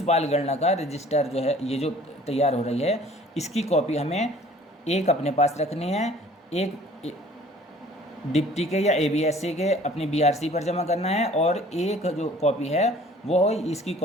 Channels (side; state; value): both; normal; correlation 0.51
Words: बाल गणना का रजिस्टर जो है ये जो तैयार हो रही है इसकी कॉपी हमें एक अपने पास रखनी है, एक डिप्टी के या एबीएससी के अपनी बीआरसी पर जमा करना है, और एक जो कॉपी है वो इसकी